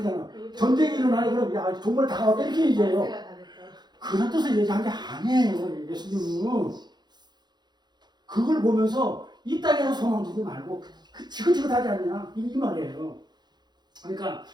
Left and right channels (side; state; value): left; late; 0.21 ms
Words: 전쟁이 일어나니 그럼 야 정말 다가왔다 이렇게 얘기해요. 그런 뜻을 얘기한 게 아니에요. 예수님은 그걸 보면서 이 땅에서 소망 두지 말고 지긋지긋하지 않냐 이 말이에요. 그러니까